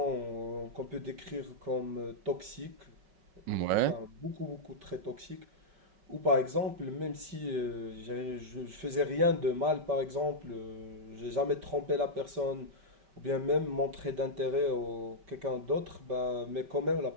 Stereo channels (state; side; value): late; left; 5.1 ms